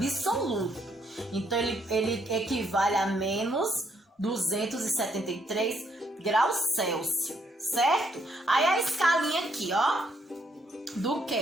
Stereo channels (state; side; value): normal; both; correlation 0.73